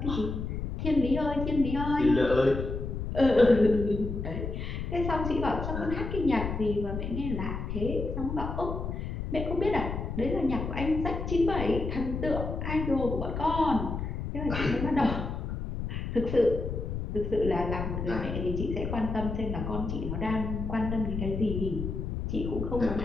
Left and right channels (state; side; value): noise; left; rumble, 4 dB below the sound